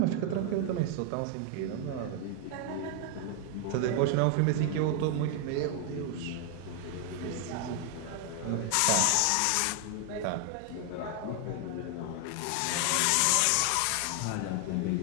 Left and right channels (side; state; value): both; different; correlation 0.00